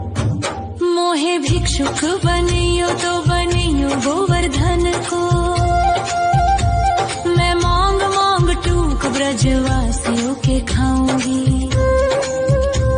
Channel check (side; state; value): both; identical; correlation 1.00